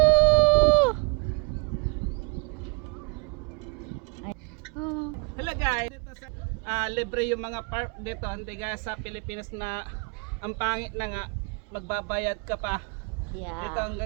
Hello guys, dito sa libre yung mga park dito, hindi gaya sa Pilipinas na ang pangit na nga magbabayad ka pa. Yeah. Dito ang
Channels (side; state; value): left; quieter; 31.3 dB